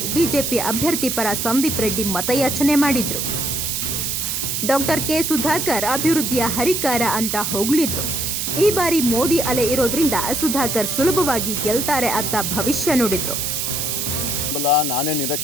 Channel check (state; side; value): noise; right; hiss, 1 dB below the sound